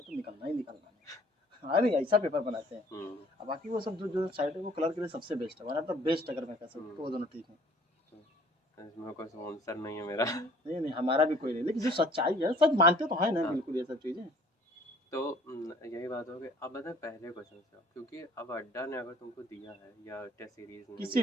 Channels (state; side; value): normal; both; correlation 0.54